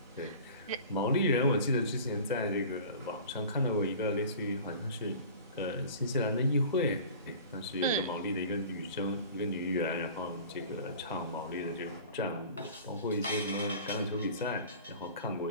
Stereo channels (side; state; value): both; inverted; correlation -0.41